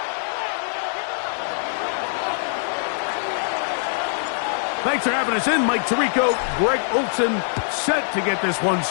Thanks for having us in. Mike Tirico, Greg Olsen, set to get this one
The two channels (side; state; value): right; silent; digital silence